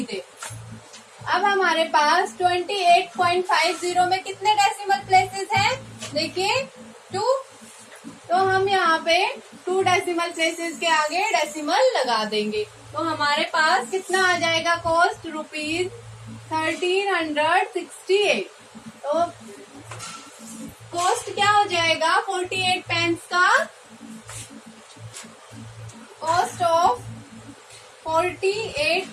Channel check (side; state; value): both; identical; correlation 1.00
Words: अब हमारे पास 28.50 में कितने डेसिमल प्लेसेस हैं, देखिए 2, तो हम यहाँ पे 2 डेसिमल प्लेसेस के आगे डेसिमल लगा देंगे, तो हमारे पास कितना आ जाएगा कॉस्ट, ₹1368। तो कॉस्ट क्या हो जाएगा 48 पेन्स का, कॉस्ट ऑफ 48